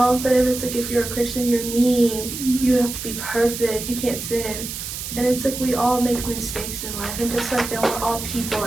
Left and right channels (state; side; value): noise; right; hiss, 7 dB below the sound